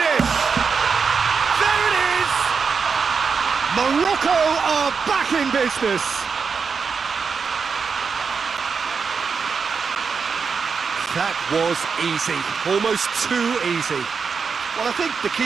There it is! Morocco are back in business. That was easy, almost too easy. Well, I think the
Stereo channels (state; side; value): quieter; left; 5.6 dB